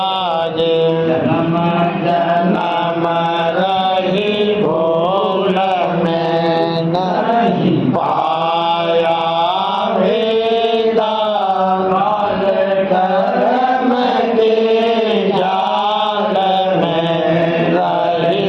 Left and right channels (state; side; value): identical; both; correlation 1.00